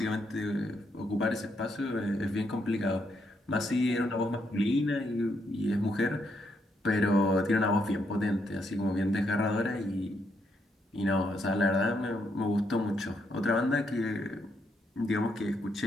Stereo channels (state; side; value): normal; both; correlation 0.77